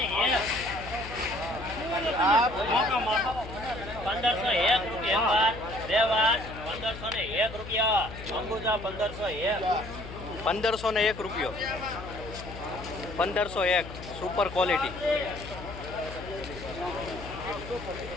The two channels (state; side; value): noise; left; hum, 12 dB below the sound